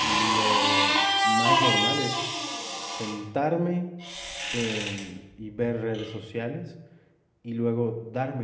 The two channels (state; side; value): identical; both; correlation 1.00